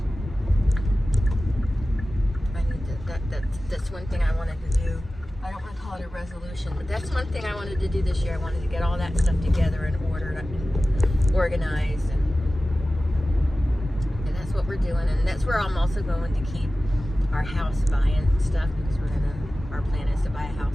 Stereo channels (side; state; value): both; normal; correlation 0.96